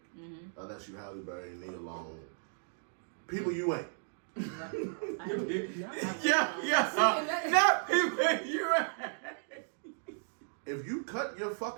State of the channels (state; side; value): silent; left; digital silence